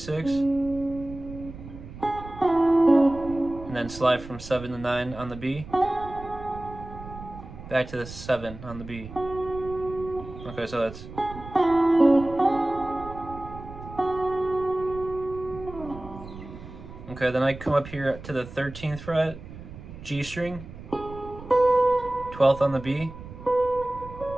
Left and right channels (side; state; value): right; noise; rumble, 14 dB below the sound